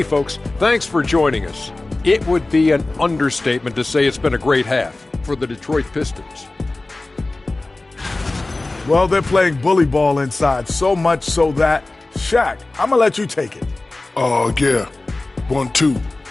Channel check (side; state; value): right; quieter; 3.0 dB